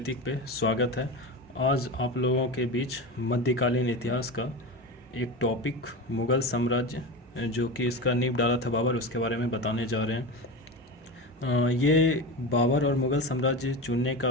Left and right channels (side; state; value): both; normal; correlation 0.24